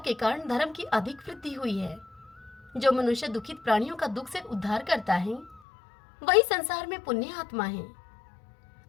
कारण धर्म की अधिक वृद्धि हुई है। जो मनुष्य दुखित प्राणियों का दुख से उद्धार करता है वही संसार में पुण्य आत्मा है।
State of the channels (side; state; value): right; drops out; at 5.6 s